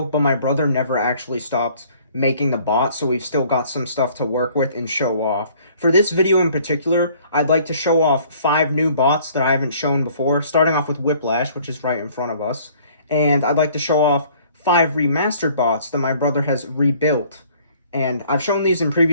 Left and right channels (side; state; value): both; inverted; correlation -0.57